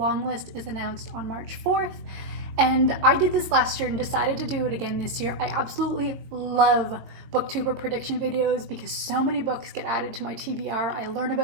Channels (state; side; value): late; left; 22 ms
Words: list is announced on March 4th. And I did this last year and decided to do it again this year. I absolutely love booktuber prediction videos because so many books get added to my TBR. I learn